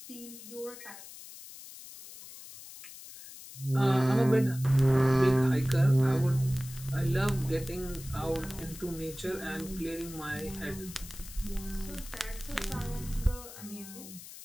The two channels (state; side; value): noise; left; hiss, 15 dB below the sound